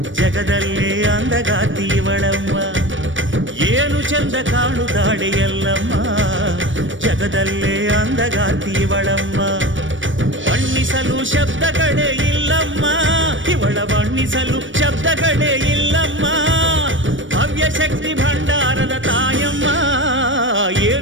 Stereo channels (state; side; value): late; left; 0.56 ms